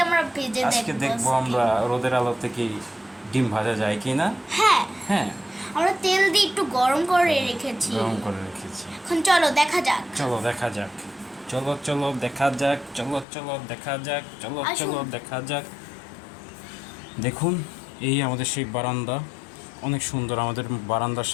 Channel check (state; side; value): drops out; right; at 13.2 s